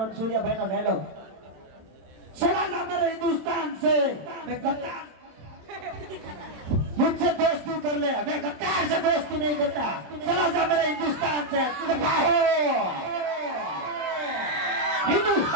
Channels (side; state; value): left; late; 27 ms